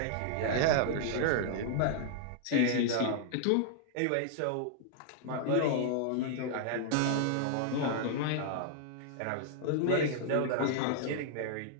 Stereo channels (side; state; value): both; different; correlation -0.01